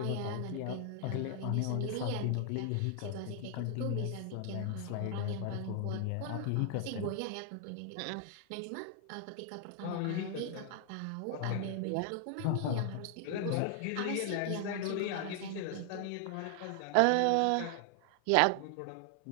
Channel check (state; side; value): different; both; correlation 0.00